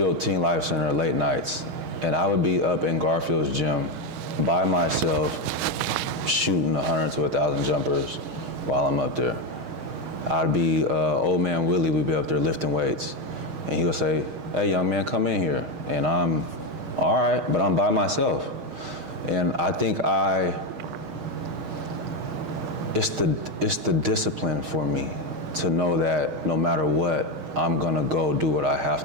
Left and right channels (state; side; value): late; left; 6.4 ms